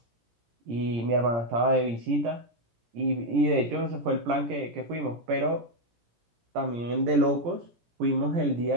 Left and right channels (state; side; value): late; left; 17 ms